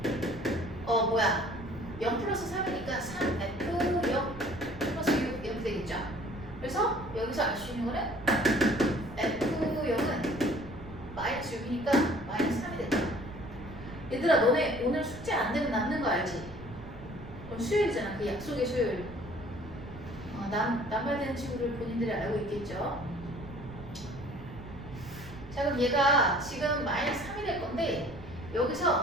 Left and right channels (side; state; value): right; noise; rumble, 15 dB below the sound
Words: 0 플러스 3이니까 3F0 플러스 6 이렇게 되겠죠. 그래서 여기서 알 수 있는 거는 F0은 마이너스 6이니까 마이너스 3이 된다. 얘들아 너네 오늘 숙제 안 되면 남는 거 알지? 그럼 수요일이잖아. 그 약속의 수요일. 남발되는 친구들 본인들이 알고 있겠죠? 자 그럼 얘가 지금 마이너스 3이 될 건데